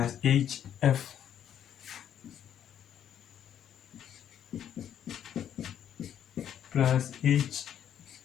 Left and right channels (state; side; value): quieter; right; 9.8 dB